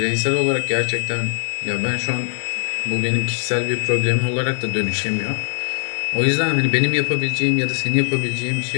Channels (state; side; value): silent; right; digital silence